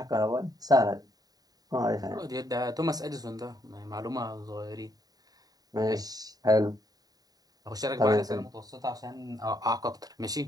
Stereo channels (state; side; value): late; left; 0.18 ms